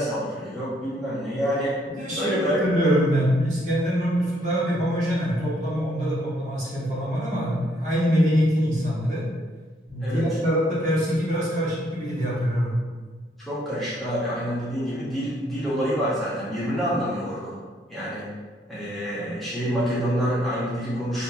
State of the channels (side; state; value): both; normal; correlation 0.69